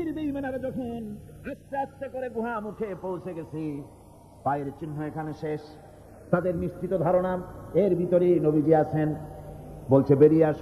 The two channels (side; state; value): both; identical; correlation 1.00